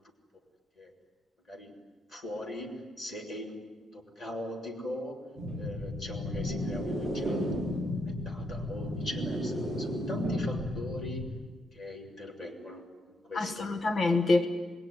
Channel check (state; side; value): normal; both; correlation 0.78